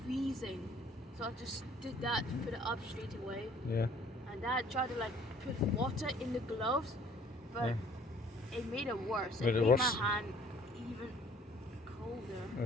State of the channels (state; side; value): normal; both; correlation 0.57